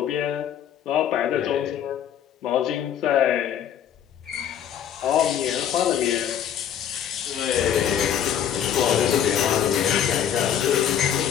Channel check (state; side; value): quieter; right; 9.5 dB